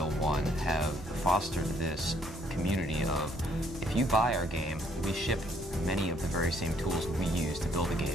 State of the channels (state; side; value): normal; both; correlation 0.66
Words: 1, have fostered this community of, if you buy our game, we ship many of the very same tools we use to build the